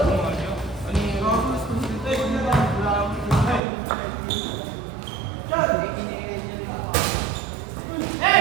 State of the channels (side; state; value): left; drops out; at 3.6 s